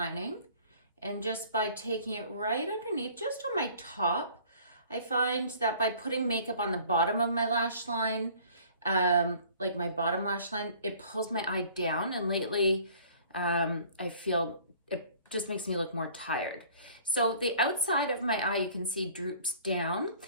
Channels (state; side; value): inverted; both; correlation -0.52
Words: And just by taking it right underneath, just on my top, I find that by putting makeup on the bottom of my lash line, like my bottom lash line, it pulls my eye down. And lately, I feel it just makes me look more tired. So the outside of my eye, you can see droops down.